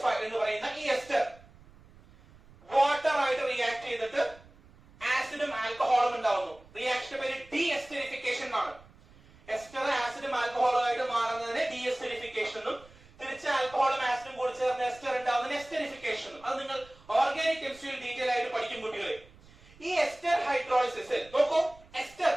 എന്ന് പറയുന്ന ഈ എസ്റ്റർ വാട്ടർ ആയിട്ട് റിയാക്ട് ചെയ്തിട്ട് ആസിഡും ആൽക്കഹോളും ഉണ്ടാവുന്നു. റിയാക്ഷന്റെ പേര് ഡീഎസ്റ്ററിഫിക്കേഷൻ എന്നാണ്. എസ്റ്റർ ആസിഡും ആൽക്കഹോളും ആയിട്ട് മാറുന്നതിന് ഡീഎസ്റ്ററിഫിക്കേഷൻ എന്നും തിരിച്ച് ആൽക്കഹോളും ആസിഡും കൂടി ചേർന്ന് എസ്റ്റർ ഉണ്ടാവുന്നതിന് എസ്റ്ററിഫിക്കേഷൻ എന്നും. അത് നിങ്ങൾ ഓർഗാനിക് കെമിസ്ട്രിയിൽ ഡീറ്റെയിൽ ആയിട്ട് പഠിക്കും കുട്ടികളെ. ഈ എസ്റ്റർ ഹൈഡ്രോളിസിസിൽ നോക്കൂ, എസ്റ്റർ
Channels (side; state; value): right; noise; rumble, 25 dB below the sound